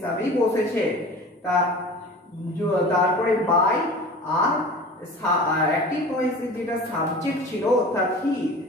বসেছে। তারপরে বাই আর অ্যাক্টিভ ভয়েসে যেটা সাবজেক্ট ছিল অর্থাৎ হি,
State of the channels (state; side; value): normal; both; correlation 0.39